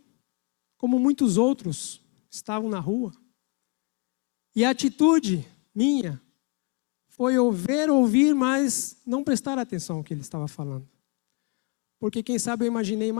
como muitos outros estavam na rua. E a atitude minha foi ouvir, mas não prestar atenção ao que ele estava falando. Porque, quem sabe, eu imaginei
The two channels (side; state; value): right; quieter; 30.7 dB